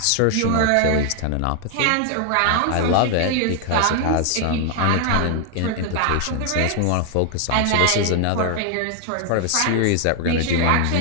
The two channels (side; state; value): both; different; correlation 0.00